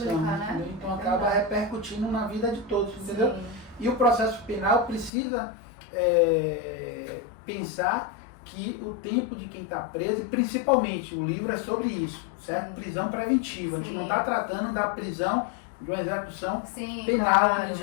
né? Entendeu? Então acaba repercutindo na vida de todos, entendeu? Sim. E o processo penal precisa pensar que o tempo de quem está preso, e principalmente o livro é sobre isso, certo? Prisão preventiva. Sim. A gente não está tratando da prisão de uma execução penal, onde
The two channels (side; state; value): right; drops out; at 5.1 s